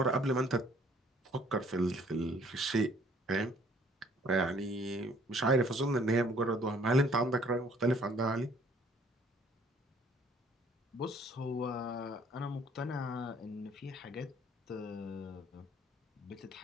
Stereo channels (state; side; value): normal; both; correlation 0.59